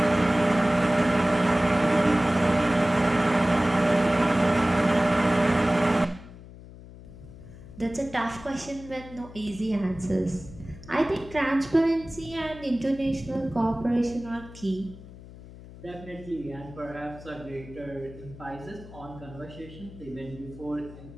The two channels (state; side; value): noise; left; hum, 17 dB below the sound